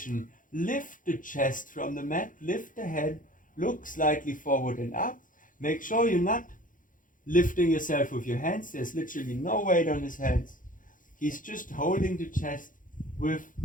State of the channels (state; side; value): late; right; 0.39 ms